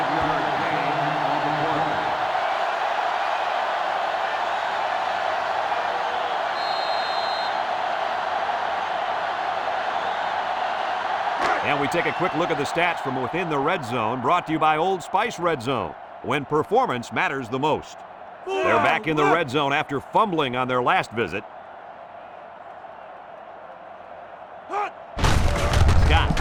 gain on the play. And we take a quick look at the stats from within the red zone, brought to you by Old Spice Red Zone, when performance matters the most. They're back in the red zone after fumbling on their last visit. Scott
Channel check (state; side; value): identical; both; correlation 1.00